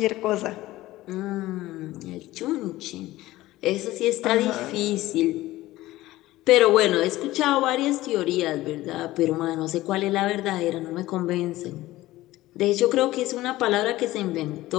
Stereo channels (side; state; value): right; quieter; 17.0 dB